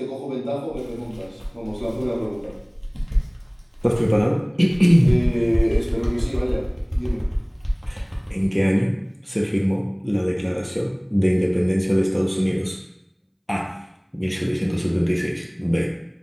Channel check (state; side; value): identical; both; correlation 1.00